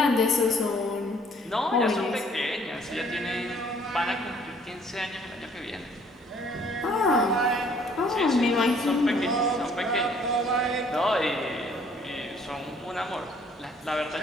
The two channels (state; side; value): normal; both; correlation 0.60